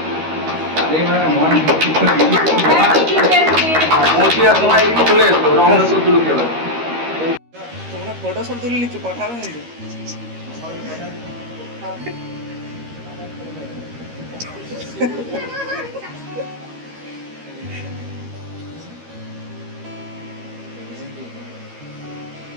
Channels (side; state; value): left; late; 13 ms